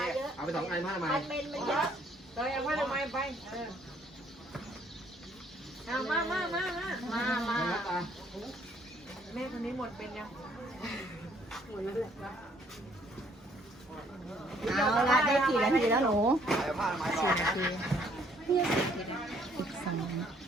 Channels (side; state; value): both; normal; correlation 0.64